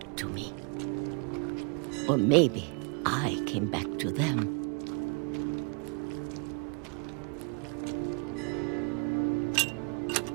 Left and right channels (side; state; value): left; quieter; 36.1 dB